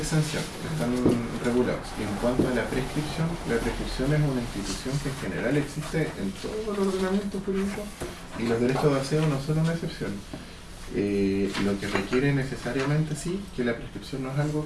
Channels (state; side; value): identical; both; correlation 1.00